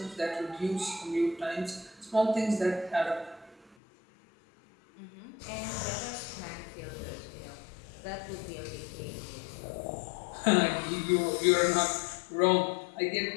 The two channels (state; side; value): drops out; right; at 3.8 s